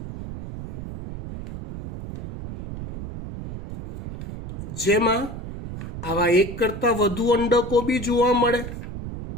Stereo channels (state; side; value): noise; right; rumble, 9 dB below the sound